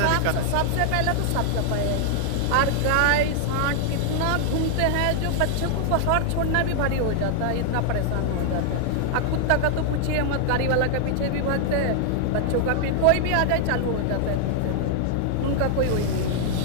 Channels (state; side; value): different; both; correlation 0.00